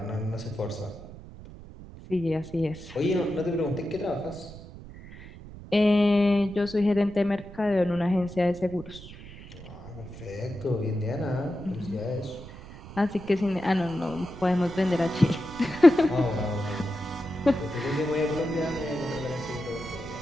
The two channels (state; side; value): noise; right; rumble, 16 dB below the sound